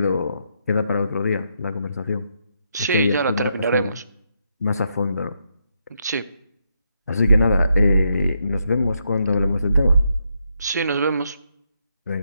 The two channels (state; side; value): inverted; both; correlation -0.79